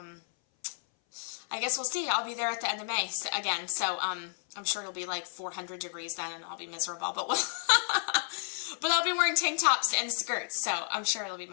I guess we'll see. I'll be there at the end of May again, so I'm sure it'll be like 400 degrees then, and I'll be miserable. But but I'll be wearing tank tops and skirts, so I'm sure it'll be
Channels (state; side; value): silent; right; 57 dB below the other